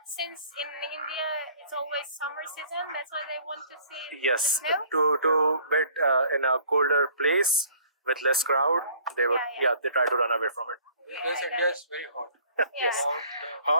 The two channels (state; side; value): inverted; both; correlation -0.54